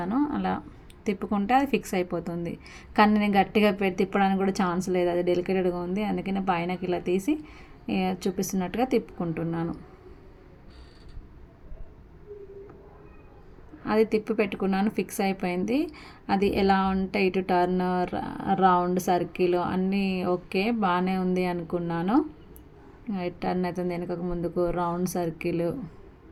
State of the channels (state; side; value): identical; both; correlation 1.00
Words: అలా తిప్పుకుంటే అది ఫిక్స్ అయిపోతుంది. కానీ నేను గట్టిగా తిప్పడానికి కూడా ఛాన్స్ లేదు, అది డెలికేటెడ్గా ఉంది. అందుకని పైనకి ఇలా తీసి చూపిస్తున్నట్టుగా తిప్పుకుంటున్నాను. అది తిప్పి పెట్టుకున్నాను, ఫిక్స్ అయిపోయింది. అది ఎలా ఉంటే ఇటు టర్న్, రౌండ్, సర్కిల్ అన్నీ ఓకే బాగానే ఉంది అనుకున్నాను. టర్న్ అవుతుంది వెనుకకు ముందుకు, రౌండ్, సర్కిల్